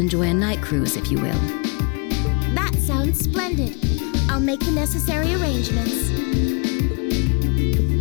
a night cruise, if you will. That sounds splendid. I'll make the necessary arrangements.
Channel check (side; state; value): right; quieter; 33.6 dB